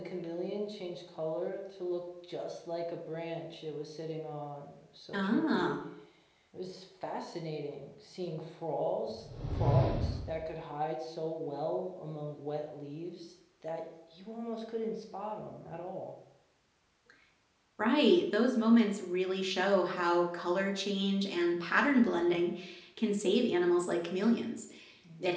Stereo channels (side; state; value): both; identical; correlation 1.00